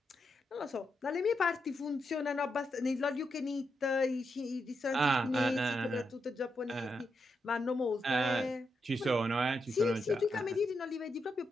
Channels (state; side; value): normal; both; correlation 0.83